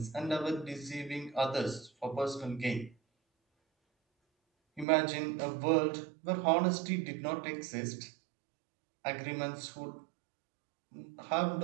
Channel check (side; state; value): left; drops out; at 4.9 s